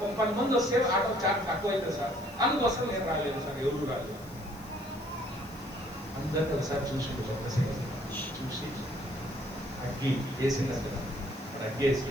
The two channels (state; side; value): noise; left; hiss, 22 dB below the sound